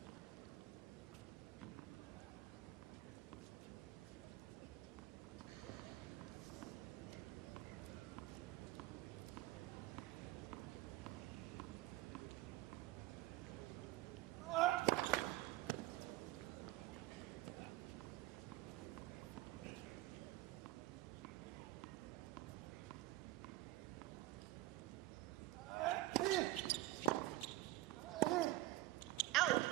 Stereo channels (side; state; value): left; quieter; 17.1 dB